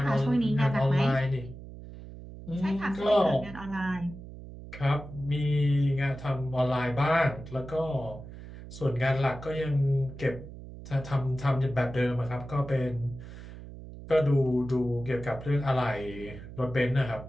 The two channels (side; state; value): right; noise; hum, 14 dB below the sound